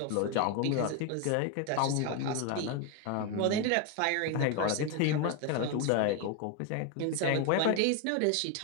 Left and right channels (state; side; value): different; both; correlation 0.02